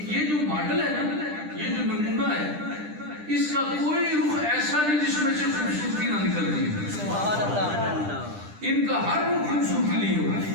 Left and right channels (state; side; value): late; left; 10 ms